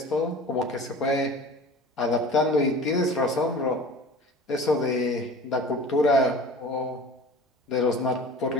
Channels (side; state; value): both; normal; correlation 0.40